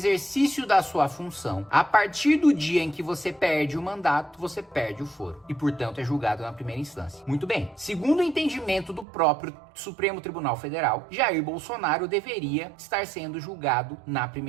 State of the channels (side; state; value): left; drops out; at 9.1 s